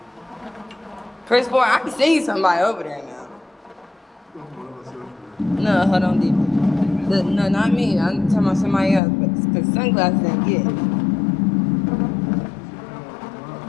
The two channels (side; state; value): right; drops out; at 9.0 s